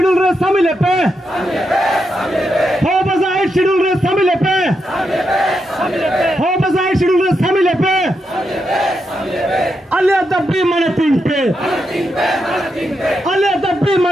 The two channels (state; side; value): normal; both; correlation 0.84